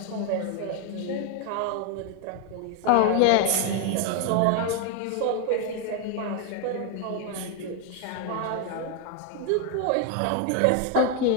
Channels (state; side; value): different; both; correlation 0.00